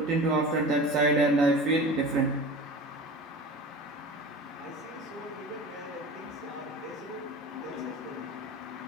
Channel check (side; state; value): both; normal; correlation 0.35